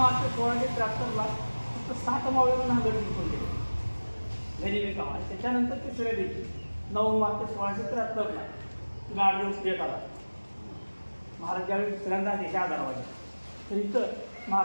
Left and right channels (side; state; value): both; inverted; correlation -1.00